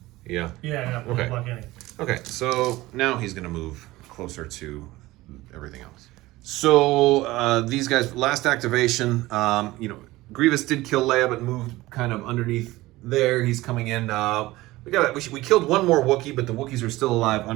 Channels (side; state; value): left; quieter; 18.6 dB